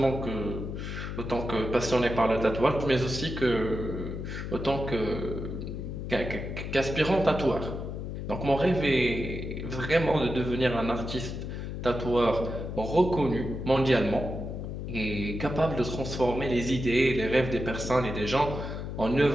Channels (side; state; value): left; noise; hum, 6 dB below the sound